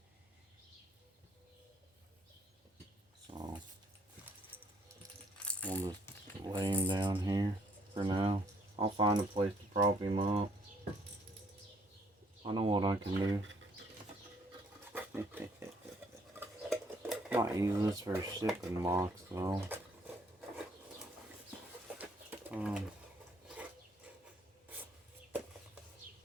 So, we'll just lay him down here for now. I'll find a place to prop him up. I know what I can do. Might use this for a shipping box though. I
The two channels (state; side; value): normal; both; correlation 0.65